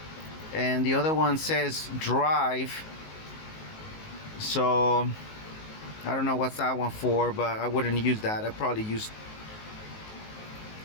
and the other one says drive. So I don't know what's that one for, but I wouldn't use that. I'd probably use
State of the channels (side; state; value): right; late; 19 ms